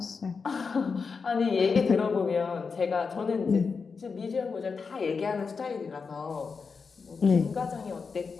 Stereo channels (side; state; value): right; quieter; 5.1 dB